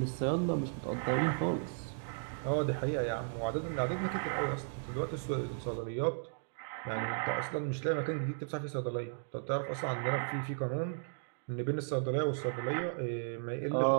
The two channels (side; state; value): left; silent; digital silence